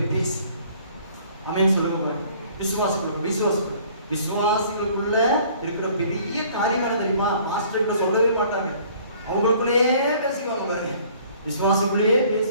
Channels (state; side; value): inverted; both; correlation -0.55